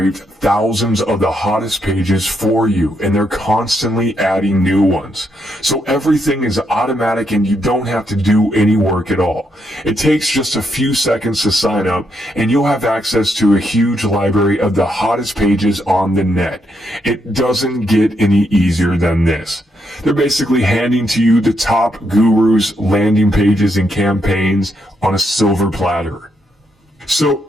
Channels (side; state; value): both; normal; correlation 0.78